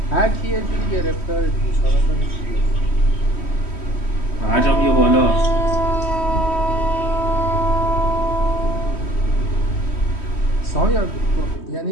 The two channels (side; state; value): right; late; 3.1 ms